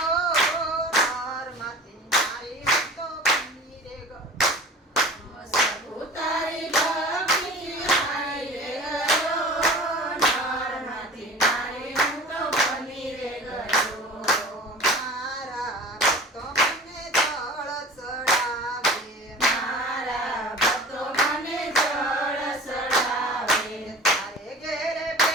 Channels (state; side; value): normal; both; correlation 0.40